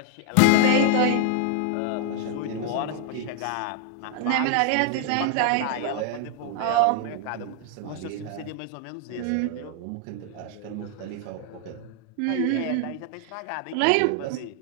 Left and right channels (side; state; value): both; different; correlation 0.00